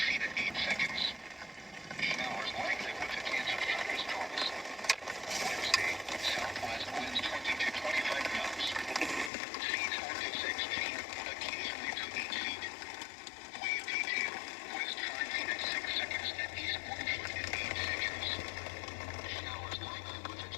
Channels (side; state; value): right; drops out; at 9.3 s